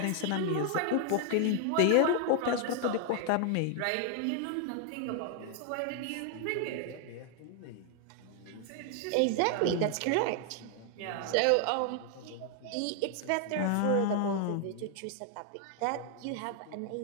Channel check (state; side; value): different; both; correlation 0.00